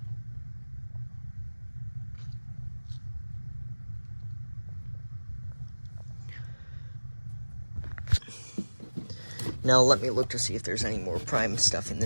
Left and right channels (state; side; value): inverted; both; correlation -1.00